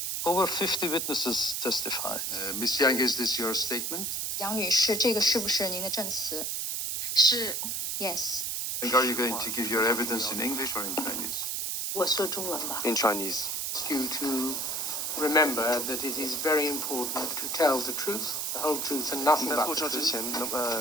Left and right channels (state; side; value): noise; right; hiss, 1 dB below the sound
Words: Over 50 witnesses testified. Ms. Yang, is this your statement? 杨女士，这个是不是您的证词？是。 Yes. Are you going to give your evidence in English or in Chinese? 我说中文吧。 In Chinese. Ask you to remember that it is very important to tell the truth, the whole truth, and nothing 在 but 作 the 证之 truth.